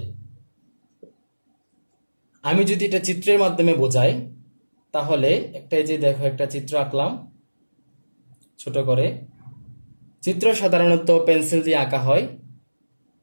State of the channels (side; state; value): both; inverted; correlation -1.00